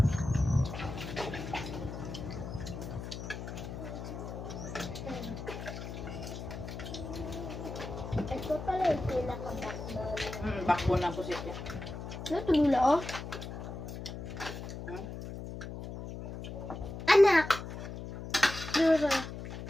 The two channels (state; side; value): noise; left; hum, 8 dB below the sound